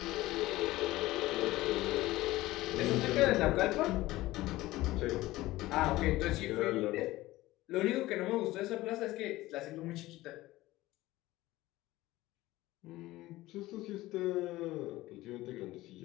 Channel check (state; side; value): quieter; right; 17.7 dB